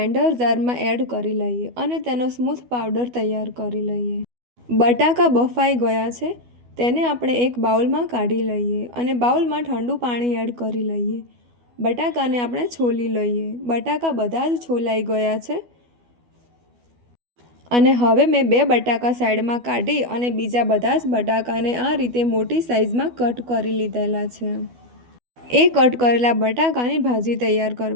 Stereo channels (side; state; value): left; late; 12 ms